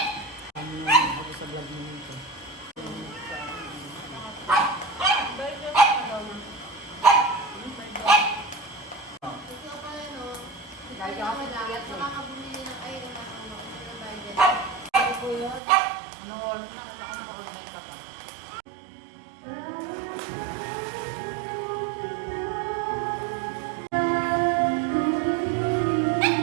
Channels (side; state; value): left; drops out; at 15.6 s